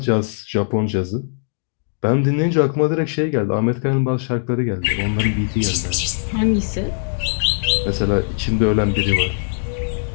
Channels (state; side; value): silent; right; digital silence